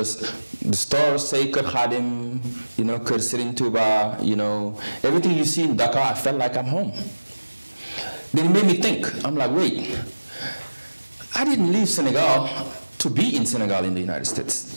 stores say Kër Khadim, you know, Kër Serigne Touba, you know, everything you see in Dakar, I felt like I'm home. Then it made me think, I'm like, wait, I didn't leave Senegal to be in Senegal in the United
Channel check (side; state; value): both; inverted; correlation -1.00